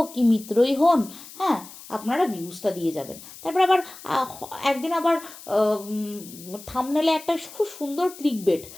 কি মিত্রই হন, হ্যাঁ, আপনারা ভিউজটা দিয়ে যাবেন। তারপর আবার একদিন আবার থাম্বনেলে একটা খুব সুন্দর ক্লিকবেট,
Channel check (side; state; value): left; noise; hiss, 17 dB below the sound